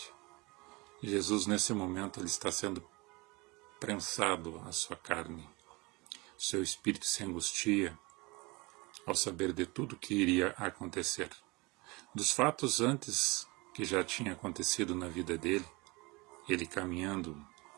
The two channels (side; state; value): left; quieter; 25.2 dB